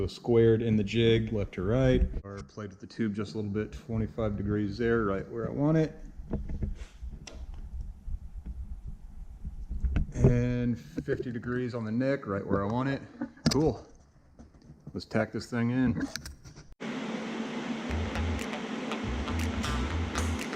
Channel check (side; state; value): both; identical; correlation 1.00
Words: squared in the jig left to right. Or played with the tube just a little bit, 25 degrees there, right where I want it. And 50 degrees on the neck, right where I want it. Cool. Let's tack this thing in.